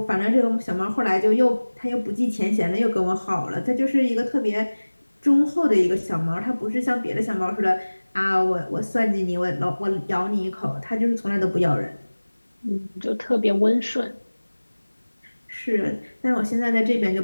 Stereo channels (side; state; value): both; inverted; correlation -1.00